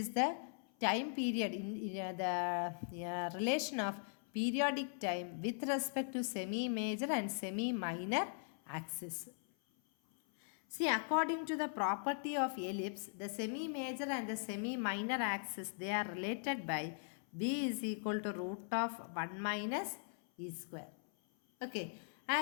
the time period in the relation of periodic time with respect to semi-major and semi-minor axis. See, according to the property of ellipse, the semi-major and the semi-minor axis, they are related by b is equal to root of 1 minus e square. Okay,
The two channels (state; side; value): silent; right; 51 dB below the other